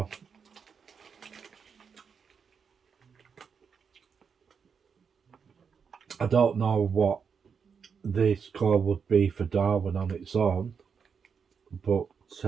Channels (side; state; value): left; quieter; 6.3 dB